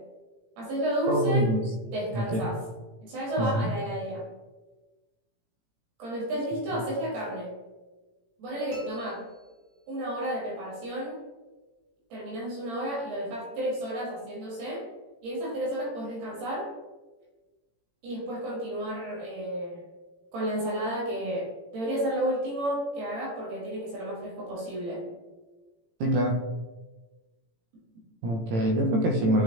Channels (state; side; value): late; left; 18 ms